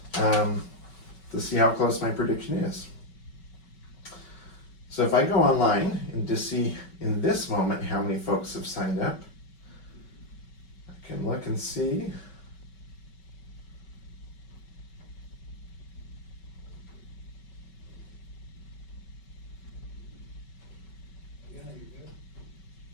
to see how close my prediction is. So if I go online and just see in this moment how many folks have signed up, I can look and see.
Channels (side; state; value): right; late; 5.3 ms